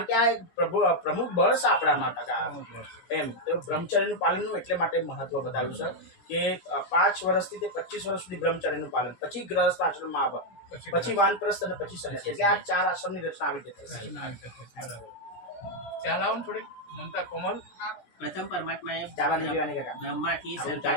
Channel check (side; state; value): right; late; 17 ms